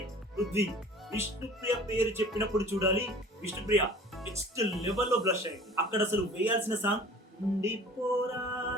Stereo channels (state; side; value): normal; both; correlation 0.46